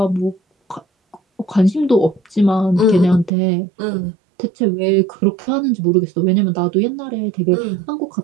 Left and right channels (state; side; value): drops out; left; at 3.3 s